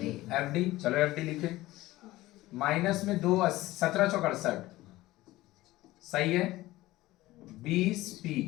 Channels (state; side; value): quieter; right; 17.6 dB